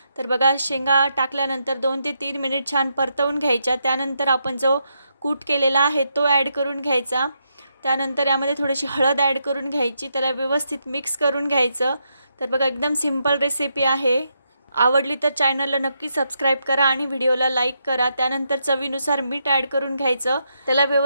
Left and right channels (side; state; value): both; inverted; correlation -0.81